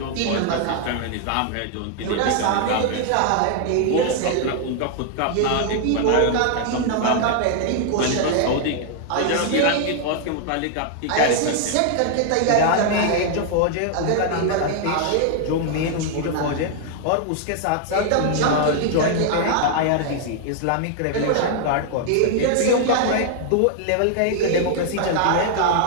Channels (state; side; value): different; both; correlation 0.00